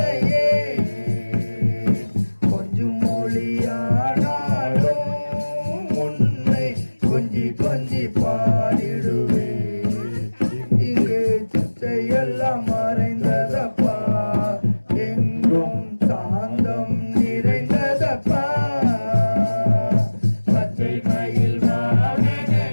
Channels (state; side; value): inverted; both; correlation -1.00